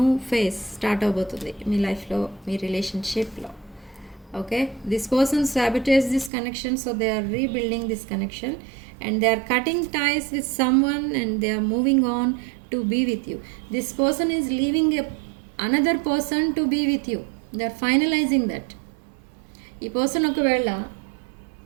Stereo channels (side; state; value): left; drops out; at 6.3 s